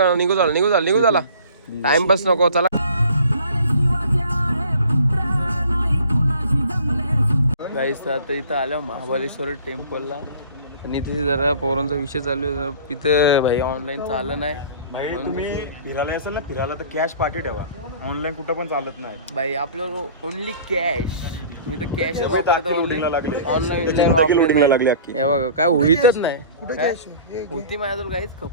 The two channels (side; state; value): both; inverted; correlation -0.46